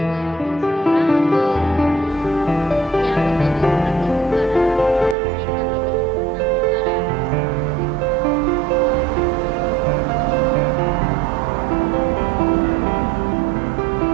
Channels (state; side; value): drops out; left; at 5.2 s